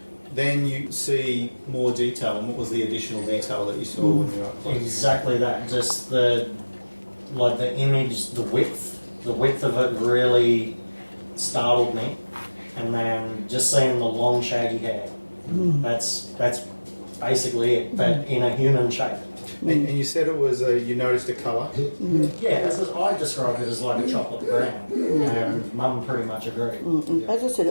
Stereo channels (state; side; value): inverted; both; correlation -1.00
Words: then you see more detail. And what was the additional detail that you saw when you were up close? Exactly that. Just the image, the width of it really startled me. And then just seeing the long shaggy hair. That's basically it, but in a human shape. And you said it was you noticed a colour. Yeah, I described it as like a chocolate brown, and Mum pretty much agreed. As I said,